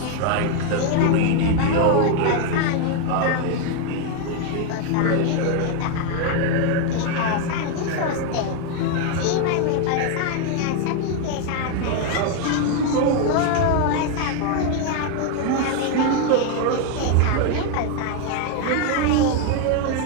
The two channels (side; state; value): both; different; correlation 0.01